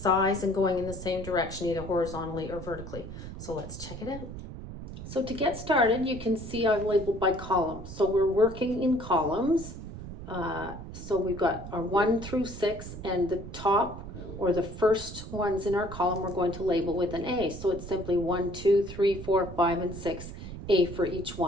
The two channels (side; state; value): right; noise; rumble, 11 dB below the sound